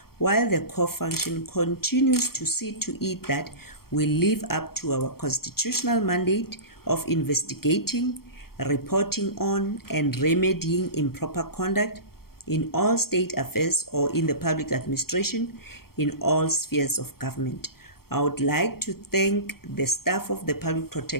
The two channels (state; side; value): late; right; 0.94 ms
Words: while the core function continues to see to it that we live up to our constitutional mandate of investigating, reporting on, and remedying improper conduct in all state affairs or in the public administration in all spheres of government. I would like to thank the staff of the Public